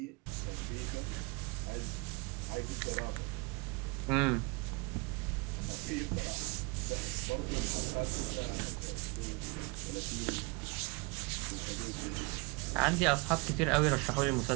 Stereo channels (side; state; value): left; quieter; 28.2 dB